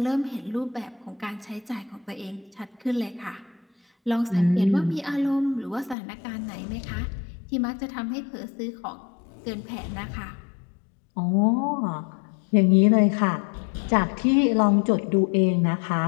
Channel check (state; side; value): drops out; right; at 6.0 s